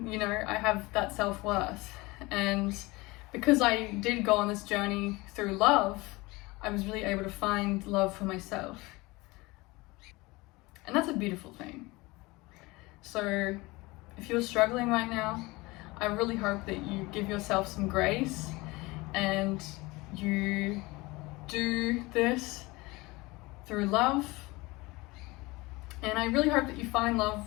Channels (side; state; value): right; quieter; 22.6 dB